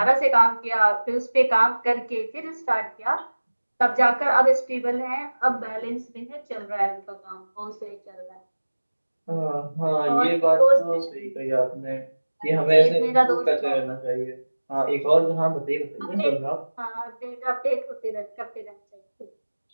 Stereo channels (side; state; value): both; inverted; correlation -1.00